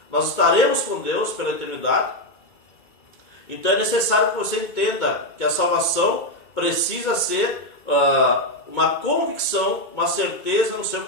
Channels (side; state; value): right; late; 2.2 ms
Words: nós estaremos com Deus pela eternidade. Então é necessário que você entenda que a salvação precisa ser uma convicção, uma certeza no seu